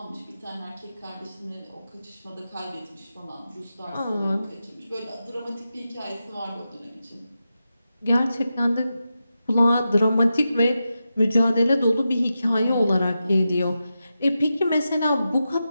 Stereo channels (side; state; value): both; inverted; correlation -0.90